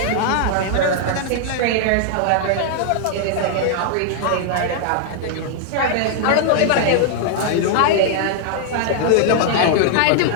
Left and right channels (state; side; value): different; both; correlation -0.01